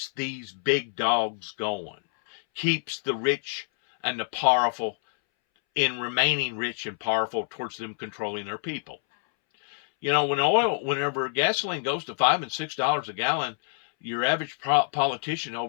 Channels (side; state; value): right; silent; 60 dB below the other